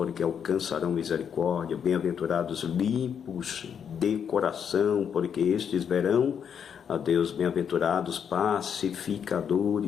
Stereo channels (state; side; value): quieter; right; 7.8 dB